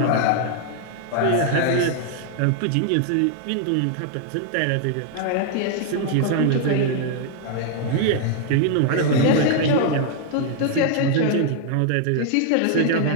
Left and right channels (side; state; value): both; different; correlation 0.00